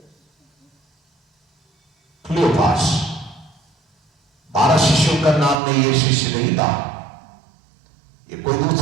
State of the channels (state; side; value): drops out; left; at 5.6 s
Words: क्लियोपास। 12 शिष्यों का नाम में यह शिष्य नहीं था। ये कोई